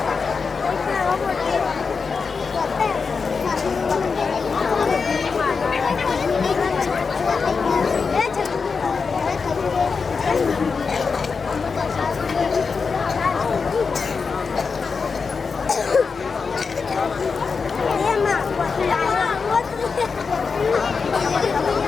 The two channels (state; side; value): quieter; right; 5.1 dB